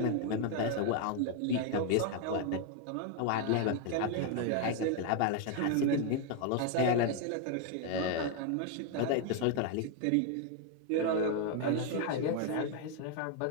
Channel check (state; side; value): different; both; correlation 0.01